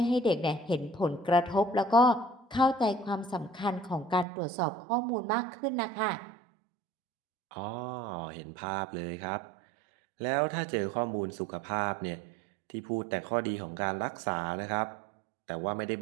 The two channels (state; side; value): drops out; left; at 4.2 s